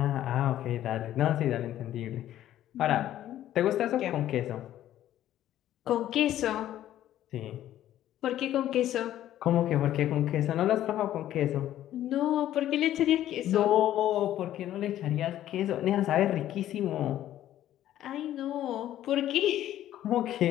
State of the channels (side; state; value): right; quieter; 12.5 dB